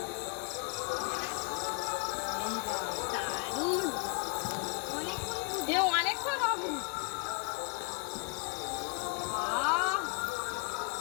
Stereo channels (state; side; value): quieter; right; 32.3 dB